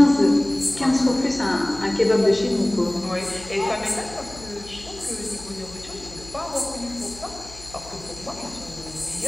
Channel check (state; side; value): noise; left; hum, 18 dB below the sound